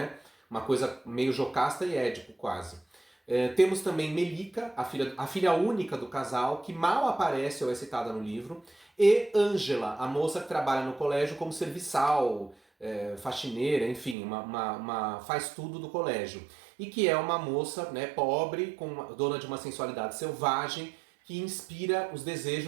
Uma coisa meio Jocasta e Édipo, quase. Temos também Melica, a filha única do casal, que mal aparece ou é citada no livro, e Ângela, a moça que trabalha no colégio como serviçal, faxineira, enfim, faz tudo do colégio. E que é uma moça, né, pobre, dona de uma sensualidade selvagem, que inspira os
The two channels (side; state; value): left; drops out; at 14.2 s